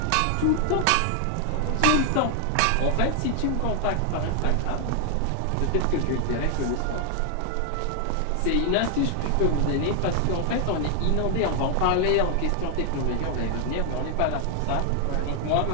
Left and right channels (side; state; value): both; different; correlation 0.00